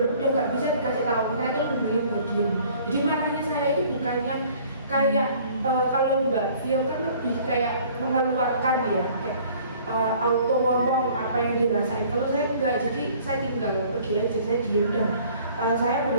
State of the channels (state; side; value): inverted; both; correlation -0.54